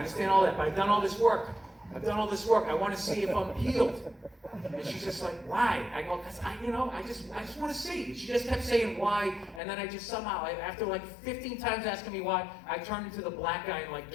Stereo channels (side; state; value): right; drops out; at 9.6 s